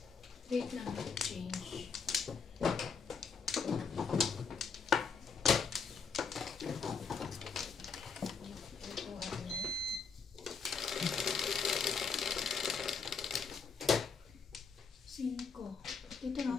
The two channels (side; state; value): right; quieter; 5.4 dB